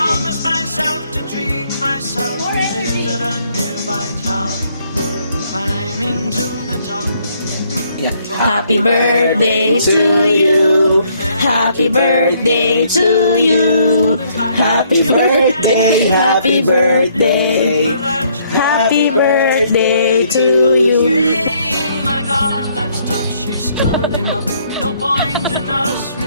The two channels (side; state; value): both; inverted; correlation -0.67